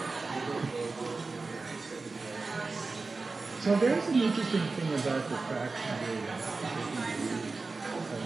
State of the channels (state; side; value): quieter; left; 3.9 dB